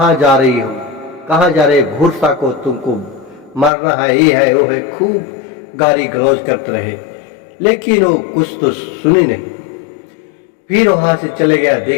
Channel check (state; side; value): drops out; right; at 3.7 s